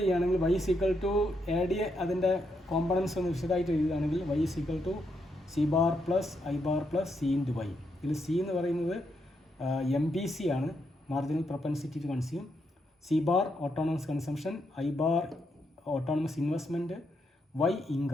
ചെയ്യുകയാണെങ്കിൽ y is equal to AD, അതിൻ്റെ components ഒന്ന് വിശദമായിട്ട് എഴുതുകയാണെങ്കിൽ y is equal to C bar plus I bar plus C into y. ഇതിൽ C എന്ന് പറയുന്നത് MPC ആണ്, marginal propensity to consume. C bar autonomous consumption, I bar autonomous investment, Y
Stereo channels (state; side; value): normal; both; correlation 0.79